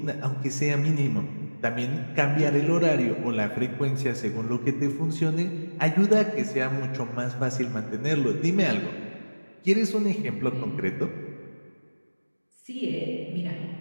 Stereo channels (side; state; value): both; inverted; correlation -1.00